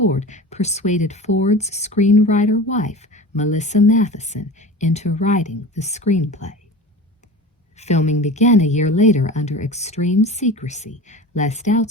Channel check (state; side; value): normal; both; correlation 0.34